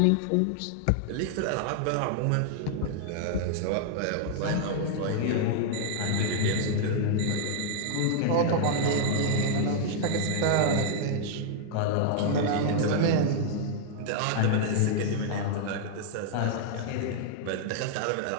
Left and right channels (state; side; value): different; both; correlation 0.00